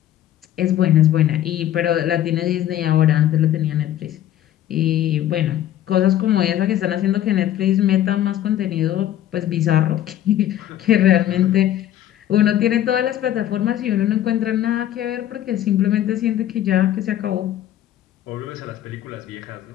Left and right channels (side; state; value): right; quieter; 12.1 dB